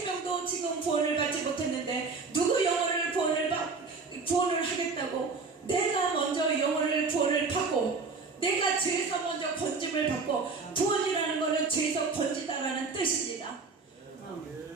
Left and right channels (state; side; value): quieter; left; 4.3 dB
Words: 지금 구원을 받지 못했는데 누구 영혼을 구원을 하겠다고 내가 먼저 영혼을 구원을 받고 내가 죄에서 먼저 건짐을 받고 구원이라는 것은 죄에서 건지다라는 뜻입니다.